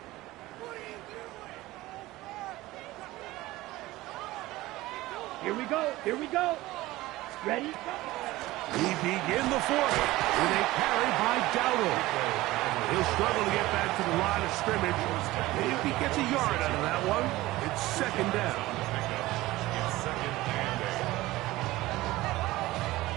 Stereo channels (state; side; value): quieter; left; 18.1 dB